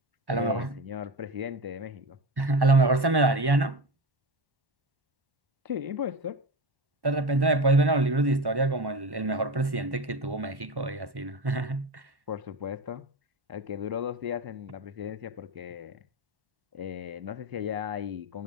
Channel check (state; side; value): late; left; 1.1 ms